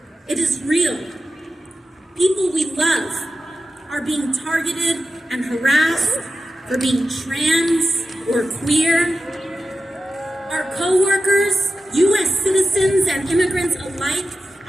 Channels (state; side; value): normal; both; correlation 0.92